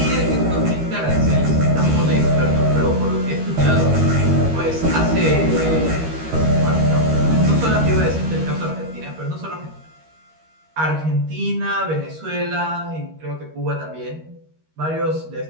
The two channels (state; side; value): late; left; 13 ms